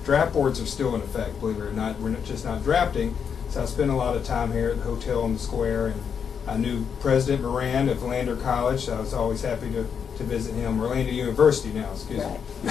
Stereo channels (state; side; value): quieter; right; 7.1 dB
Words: Draft boards are still in effect, believe it or not. We're just not drafting. So I spent a lot of time here at the hotel on the square, and I knew President Moran of Lander College, so I was always happy to visit him. Orlando University now, excuse me.